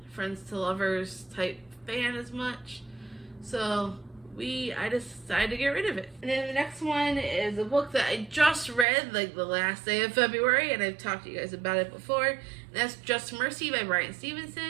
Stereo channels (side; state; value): left; drops out; at 8.8 s